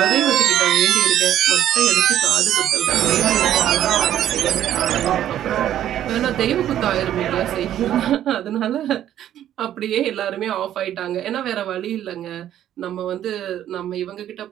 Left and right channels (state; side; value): quieter; left; 11.4 dB